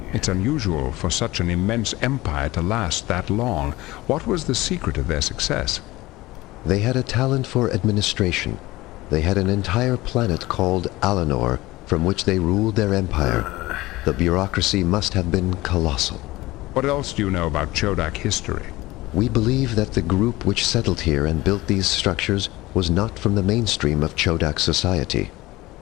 It's unusual for such an immense empire to last that long. What was the secret of their success? They had a talent for administration. They had an entire planet called Alanor, from which they ruled their empire. The bureaucracy must have been colossal. What else do you know about Chodak history? We believe that the group which settled here and built these structures was not from the mainstream of Chodak society.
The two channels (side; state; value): right; quieter; 19.0 dB